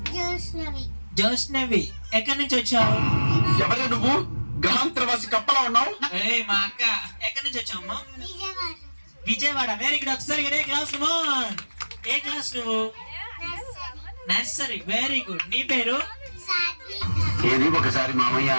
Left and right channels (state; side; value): inverted; both; correlation -1.00